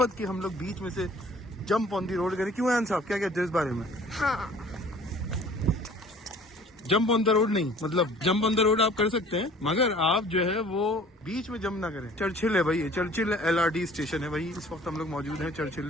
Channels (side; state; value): both; normal; correlation 0.50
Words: कि हम लोग बीच में से जंप ऑन दी रोड करें। क्यों आन साहब, क्या कहते हैं इस बारे में? हाँ जंप ऑन द रोड नहीं, मतलब जंप ऑन द रोड आप कर सकते हैं, मगर आप जो है वो बीच में जंप ना करें। चर्चिल है भाई, ये चर्चिल LRT स्टेशन है भाई, इस वक्त हम लोग मौजूद हैं